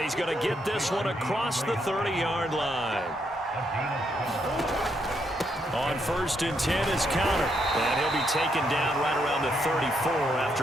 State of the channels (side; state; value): both; normal; correlation 0.77